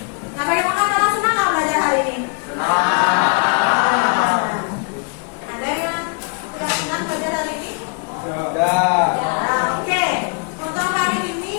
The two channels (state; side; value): quieter; right; 39.3 dB